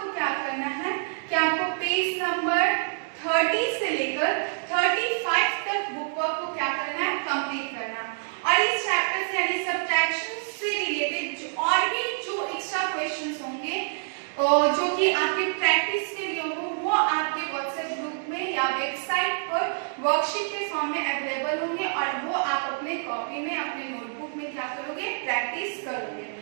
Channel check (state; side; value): silent; left; digital silence